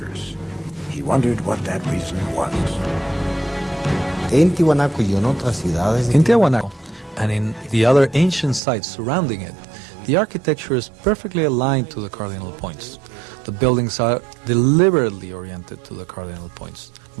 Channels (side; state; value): left; drops out; at 8.6 s